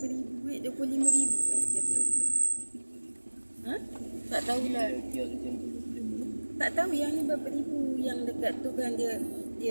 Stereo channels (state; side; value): inverted; both; correlation -1.00